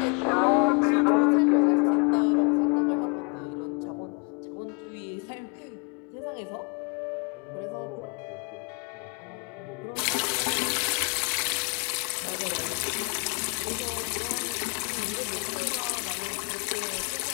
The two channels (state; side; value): quieter; right; 34.6 dB